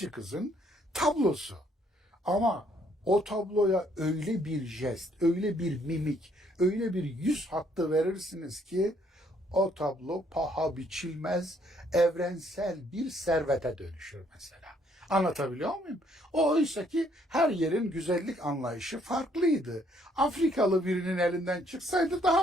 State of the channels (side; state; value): both; normal; correlation 0.67